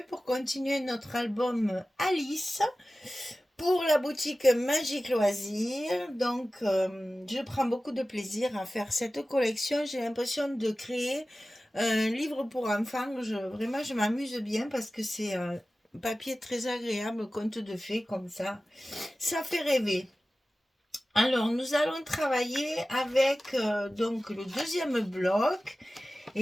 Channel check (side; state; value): both; normal; correlation 0.96